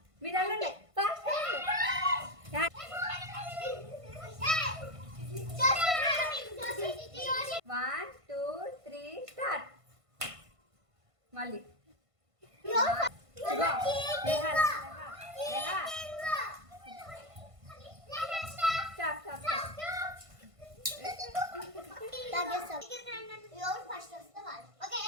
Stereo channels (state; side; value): late; left; 1.5 ms